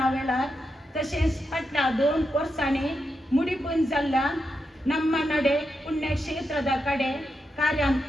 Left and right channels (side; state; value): both; normal; correlation 0.86